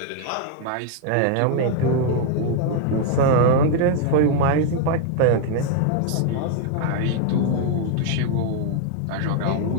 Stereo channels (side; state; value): both; different; correlation 0.00